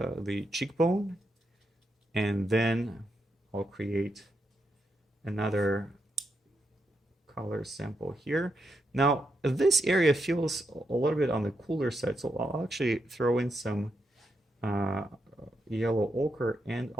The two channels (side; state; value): both; normal; correlation 0.83